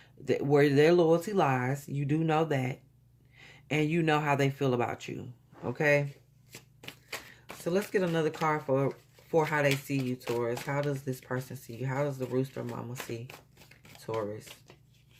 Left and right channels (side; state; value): both; identical; correlation 1.00